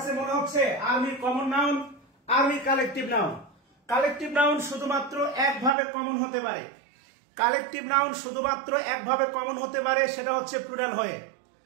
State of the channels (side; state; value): left; drops out; at 5.7 s